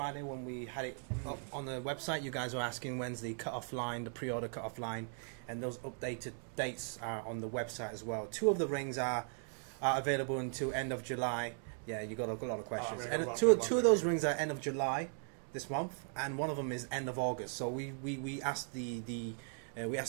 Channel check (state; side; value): silent; left; 52 dB below the other